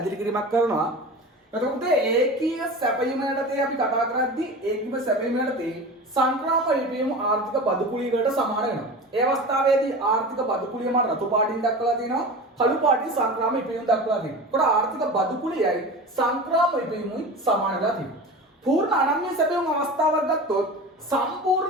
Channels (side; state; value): both; normal; correlation 0.32